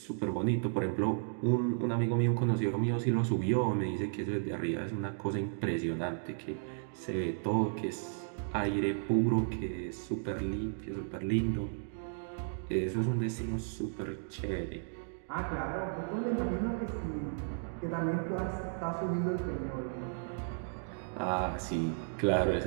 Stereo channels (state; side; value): silent; left; digital silence